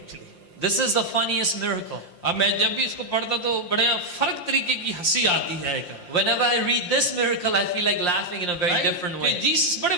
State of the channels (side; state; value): right; late; 5.7 ms